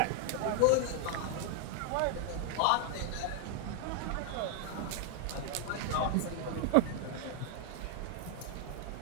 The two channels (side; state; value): both; different; correlation 0.00